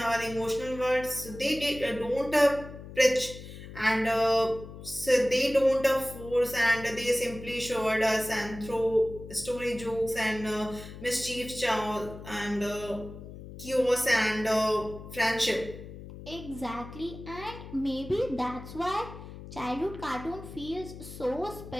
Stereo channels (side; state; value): left; noise; hum, 13 dB below the sound